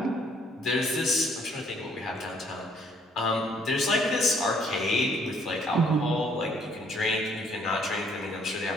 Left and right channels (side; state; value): both; normal; correlation 0.64